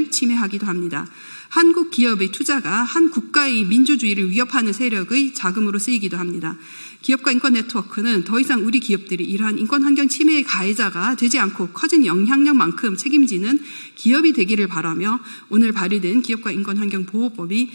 침해하기도 합니다. 한국 기업의 투자가 한 국가의 민주주의를 위협하는 세력의 자금으로 쓰이기도 합니다. 기업과 인권 네트워크는 더 이상 우리 기업들이 이러한 인권 환경 침해의 가해자가 되지 않고 커진 영향력만큼 책임지는 기업이 되기를 바라며 오늘 발의된 기업과 인권 환경 보호법이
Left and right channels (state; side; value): inverted; both; correlation -1.00